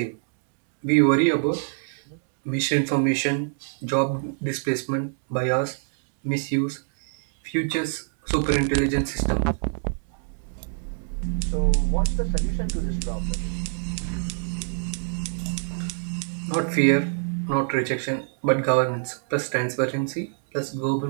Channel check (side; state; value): left; silent; digital silence